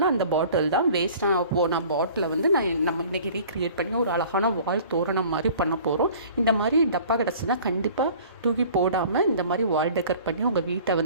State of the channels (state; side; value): inverted; both; correlation -0.47